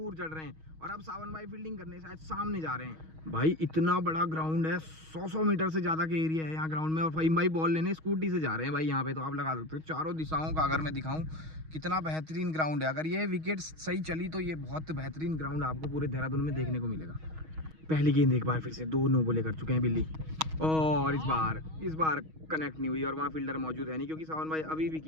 चढ़ रहे हैं, और अब सावन भाई फील्डिंग करने शायद सामने जा रहे हैं। भाई इतना बड़ा ग्राउंड है, 100 मीटर से ज्यादा के एरिया है यहाँ ग्राउंड में, और फहीम भाई बॉल लेने स्कूटी से जा रहे हैं भाई। यहाँ पे तो आप लगा सकते हो चारों दिशाओं का, अगर मैं दिखाऊं कितना बेहतरीन ग्राउंड है। अगर ये विकेट सही चली तो ये बहुत बेहतरीन ग्राउंड आपको पूरे देहरादून में देखने को मिलेगा। पहली गेंद एक बार फिर से, 2 नो बॉले कर चुके हैं बिल्ली, और इस बार कनेक्ट नहीं हुई, और वहाँ फील्डर मौजूद है नहीं क्योंकि सावन भाई अभी भी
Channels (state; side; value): late; left; 6.3 ms